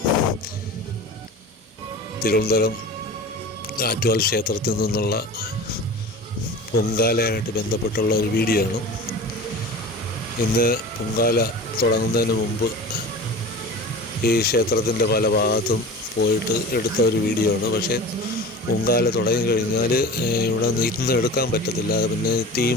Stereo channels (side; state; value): both; normal; correlation 0.36